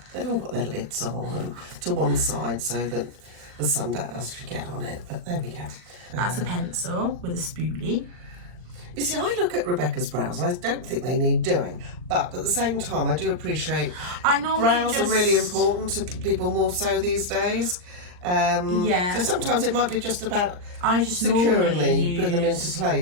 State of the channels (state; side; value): late; left; 39 ms